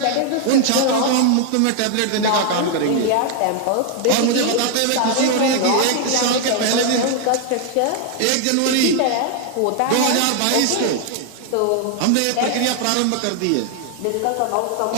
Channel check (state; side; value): different; both; correlation 0.00